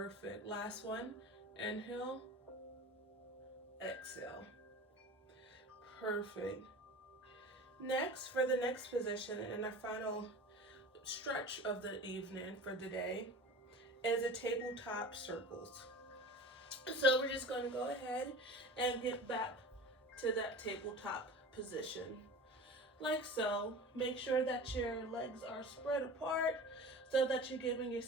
Last one. Inhale, exhale. Perfect. Next, for the next position and our final stretch of the evening for the day is a tabletop circles. So we're just going to go ahead and get back to that tabletop position like so. Make sure that your legs are spread apart so that you're giving your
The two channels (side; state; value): both; normal; correlation 0.36